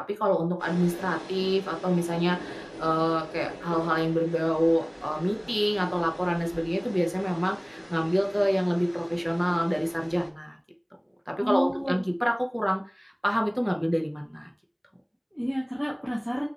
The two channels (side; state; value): both; identical; correlation 1.00